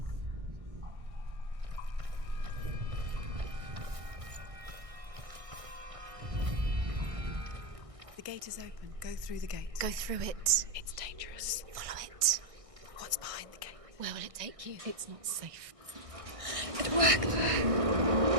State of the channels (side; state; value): left; late; 1.6 ms